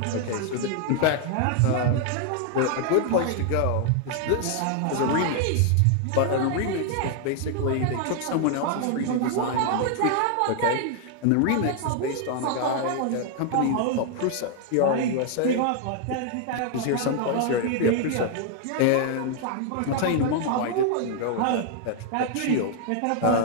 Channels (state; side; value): different; both; correlation 0.00